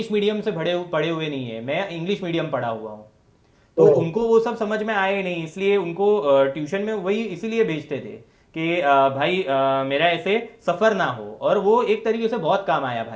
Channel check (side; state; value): both; identical; correlation 1.00